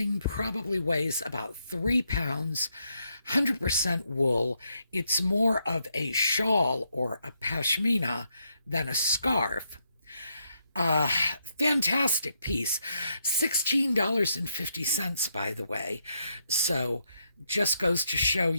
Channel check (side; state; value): both; inverted; correlation -0.78